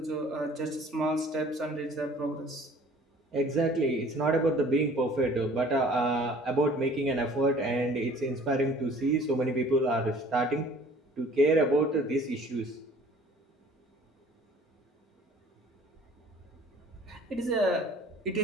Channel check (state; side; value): normal; both; correlation 0.51